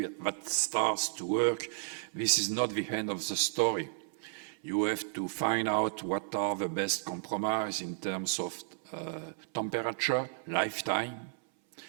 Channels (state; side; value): silent; left; 56 dB below the other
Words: starts to work, this is not the end of the story. You have to find out what are the best compromise in terms of temperature, lifetime,